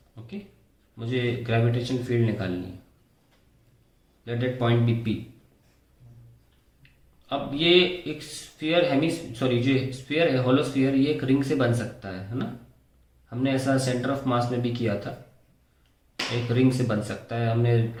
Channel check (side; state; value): both; identical; correlation 1.00